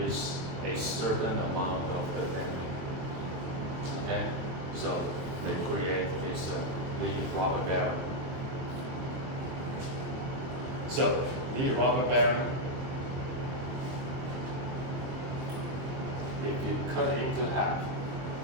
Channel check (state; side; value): late; left; 23 ms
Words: a certain amount of the damping. Okay, so they create this lead rubber bearing. So lead rubber bearing, if you cut it into half,